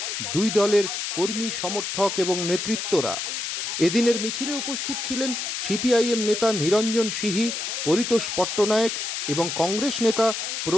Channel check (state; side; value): noise; left; hiss, 3 dB below the sound